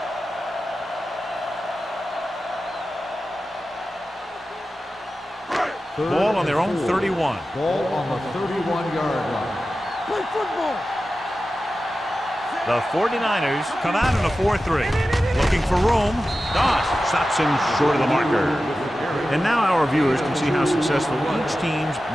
Ball on their own 31. Ball on the 31-yard line. Play football. The 49ers come out in a 4-3. Looking for room. Doss stops him short of the marker. And now our viewers can see how successful each team's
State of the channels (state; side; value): normal; both; correlation 0.93